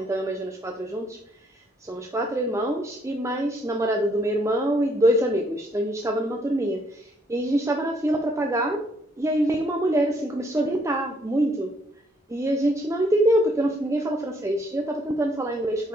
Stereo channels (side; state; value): both; normal; correlation 0.69